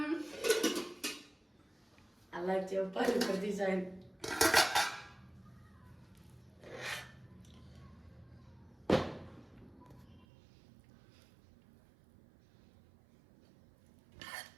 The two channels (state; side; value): drops out; left; at 10.2 s